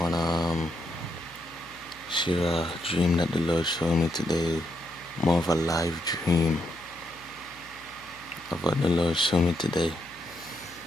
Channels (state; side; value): noise; left; hum, 26 dB below the sound